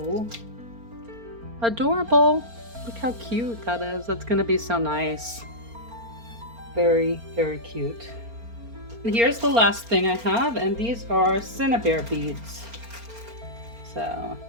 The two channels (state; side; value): late; left; 4.3 ms